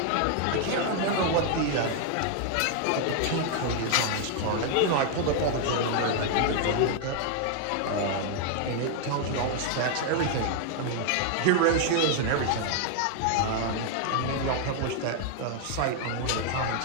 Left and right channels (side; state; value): both; different; correlation 0.00